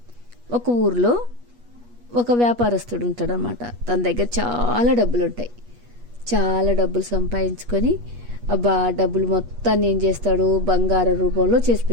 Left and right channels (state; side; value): late; left; 8.3 ms